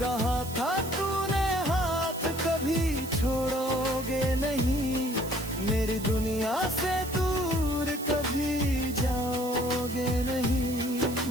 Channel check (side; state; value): right; noise; hiss, 13 dB below the sound